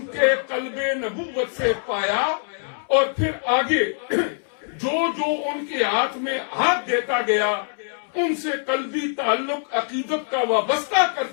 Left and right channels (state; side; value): silent; right; 63 dB below the other